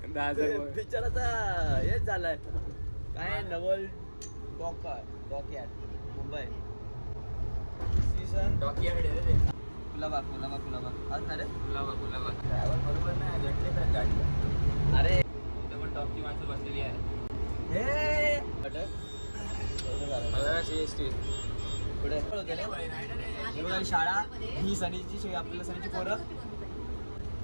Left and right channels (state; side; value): inverted; both; correlation -1.00